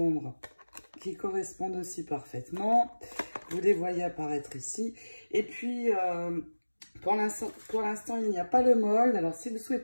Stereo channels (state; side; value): inverted; both; correlation -1.00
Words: aussi parfaitement. Vous les voyez apparaître ici. Et puis, pour l'instant, il n'y a pas le mold. Alors, si vous